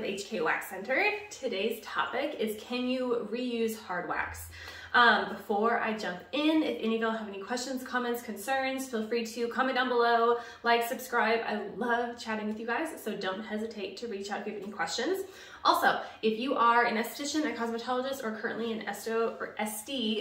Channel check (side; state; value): both; identical; correlation 1.00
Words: HK Wax Center. Today's topic is, can you reuse hard wax? Before I jump in, if any of y'all have any questions, comments, concerns, feel free to comment down below, like, subscribe. I love chatting with you guys, so don't hesitate to reach out if you have any questions. Also, if you are an esthetician, a cosmetologist, or currently in esto or